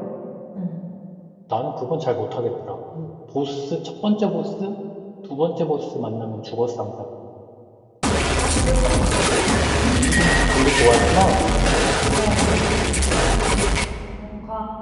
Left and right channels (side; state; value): both; identical; correlation 1.00